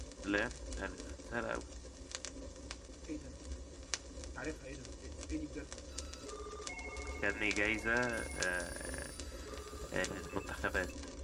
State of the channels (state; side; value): identical; both; correlation 1.00